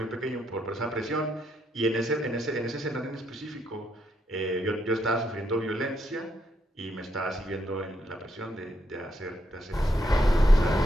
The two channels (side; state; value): both; normal; correlation 0.77